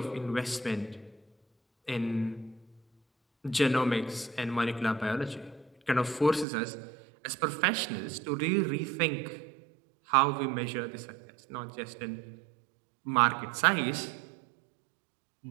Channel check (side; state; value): left; drops out; at 6.5 s